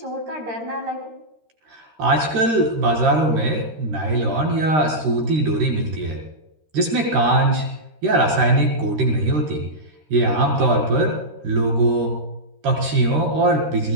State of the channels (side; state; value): left; late; 13 ms